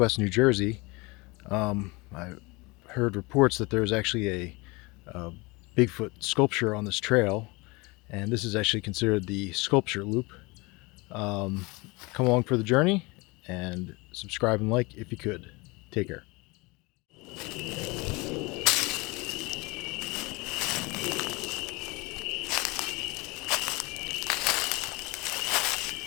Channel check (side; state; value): right; quieter; 25.4 dB